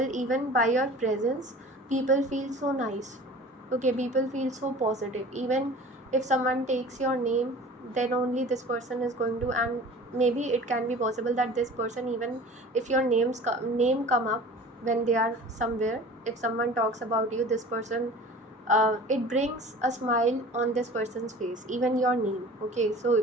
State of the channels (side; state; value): both; normal; correlation 0.42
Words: even by your presence, people feel so nice. Okay, people feel so positive. Even if someone takes your name, then only this person is going to, and maybe it can be possible that this person, even if your name come up when they are somewhere, if someone talks about you, this person, it brings a smile on this person's face, even your name. Okay,